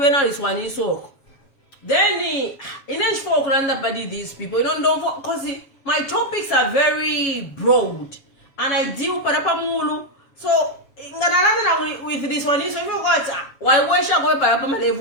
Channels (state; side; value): late; right; 7.2 ms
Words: is one in so. Then in each folk randa padi these people, you don't because my topics are very broad and I deal parapamulu. So with this one, so you got why should I go parapama